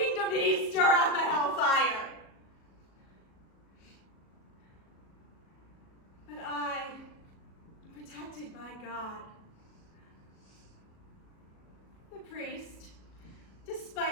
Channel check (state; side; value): late; right; 37 ms